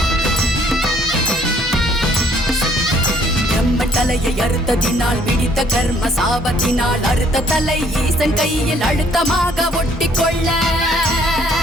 தலையை அறுத்ததினால் பிடித்த கர்ம சாபத்தினால் அறுத்த தலை ஈசன் கையில் அழுத்தமாக ஒட்டிக்கொள்ள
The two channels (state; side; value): normal; both; correlation 0.62